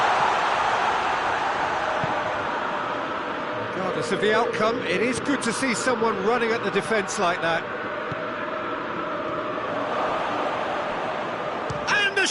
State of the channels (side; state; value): both; identical; correlation 1.00